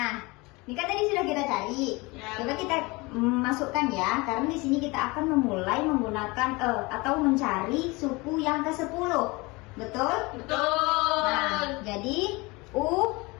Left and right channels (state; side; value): quieter; right; 24.6 dB